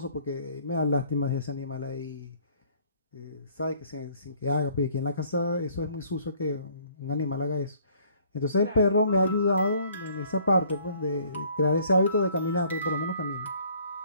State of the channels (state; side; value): inverted; both; correlation -0.59